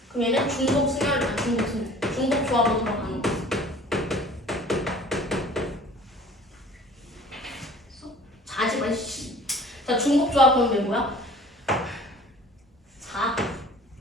그럼 얘는 중복 순열, 중복 조합으로 들어가는 거. 자지 마. 자, 중복 조합 그럼 왜 뭐야? 4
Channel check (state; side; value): normal; both; correlation 0.47